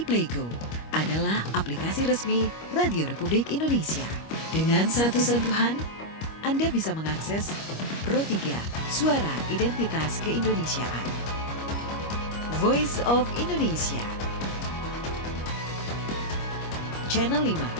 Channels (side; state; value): right; late; 25 ms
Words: Playgo adalah aplikasi resmi Radio Republik Indonesia. Dengan satu sentuhan, Anda bisa mengakses Pro 3 Suara Identitas Keindonesiaan, Voice of Indonesia, Channel 5,